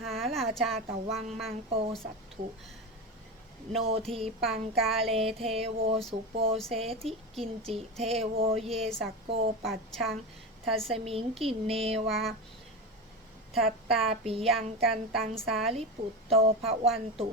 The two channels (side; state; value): both; normal; correlation 0.21